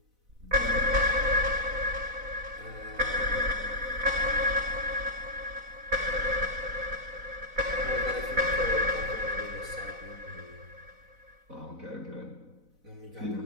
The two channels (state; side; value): late; left; 4.0 ms